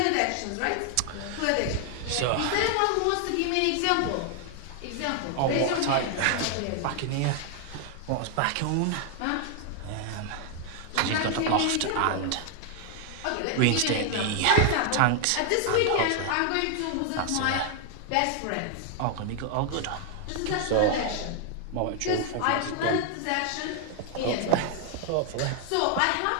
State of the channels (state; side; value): different; both; correlation 0.00